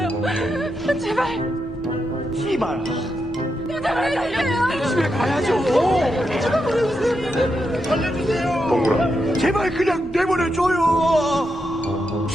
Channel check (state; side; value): normal; both; correlation 0.85